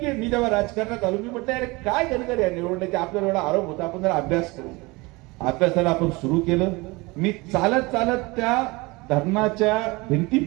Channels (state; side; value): quieter; left; 24.1 dB